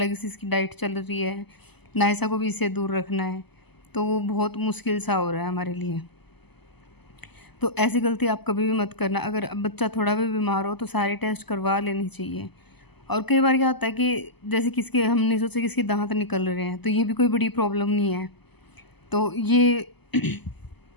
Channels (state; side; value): late; right; 0.99 ms